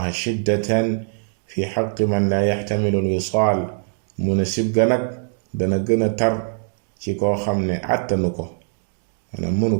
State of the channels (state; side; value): silent; left; digital silence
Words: shiddatan fi xaqi man la yaxtamilu al wisaal mu ne sib ga nag dana gën a tar ci koo xam ne àttanu ko maanaam mënu